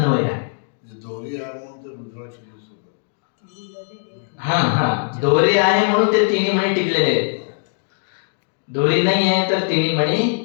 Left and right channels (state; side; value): silent; right; 65 dB below the other